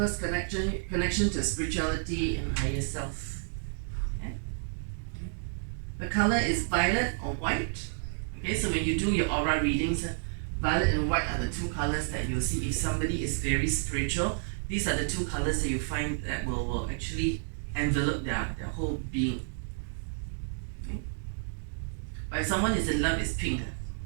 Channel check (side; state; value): left; silent; digital silence